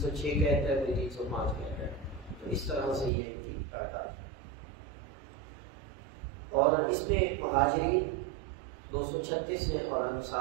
کہتا ہے، کوئی 305 کہتا ہے. تو اس طرح سے یہ ان کی تعداد ہے. اور اس میں مہاجرین 236 ہیں اور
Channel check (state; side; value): drops out; left; at 3.1 s